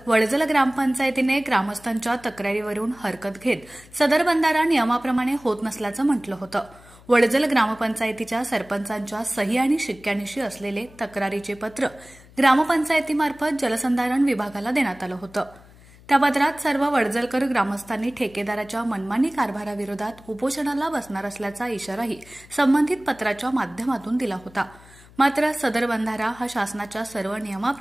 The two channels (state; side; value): noise; left; hum, 24 dB below the sound